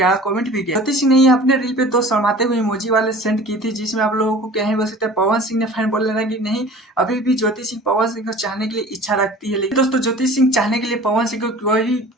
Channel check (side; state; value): both; normal; correlation 0.44